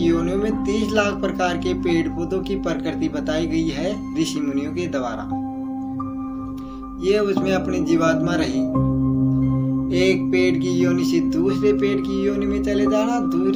में 30 लाख प्रकार के पेड़ पौधों की प्रकृति बताई गई है ऋषि मुनियों के द्वारा। ये उसमें अपनी जीवात्मा रही। एक पेड़ की योनि से दूसरे पेड़ की योनि में चले जाना,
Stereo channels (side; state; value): both; identical; correlation 1.00